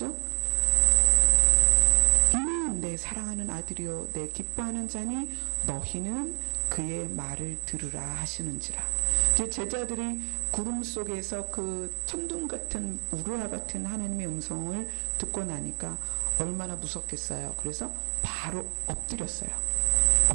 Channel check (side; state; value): left; silent; digital silence